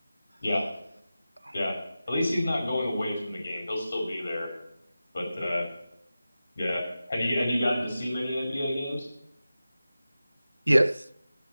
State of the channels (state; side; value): inverted; both; correlation -0.94